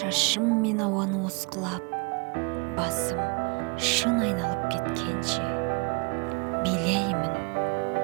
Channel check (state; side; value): quieter; left; 31.6 dB